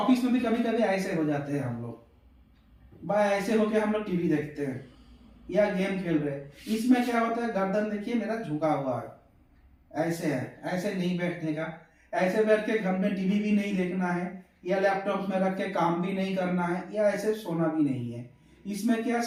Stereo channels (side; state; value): both; identical; correlation 1.00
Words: में भी कभी कभी ऐसे हो जाते हैं हम लोग, भाई ऐसे होके हम लोग टीवी देखते हैं या गेम खेल रहे हैं। इसमें क्या होता है, गर्दन देखिए मेरा झुका हुआ है, ऐसे है, ऐसे नहीं बैठने का। ऐसे बैठ के घर में टीवी भी नहीं देखना है या लैपटॉप में रख के काम भी नहीं करना है या ऐसे सोना भी नहीं है। इसमें क्या